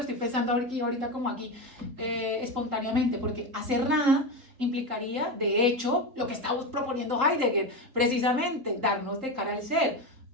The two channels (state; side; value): late; left; 3.8 ms